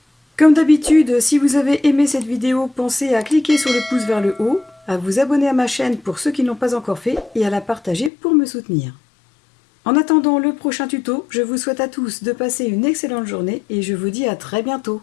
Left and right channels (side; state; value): right; drops out; at 8.1 s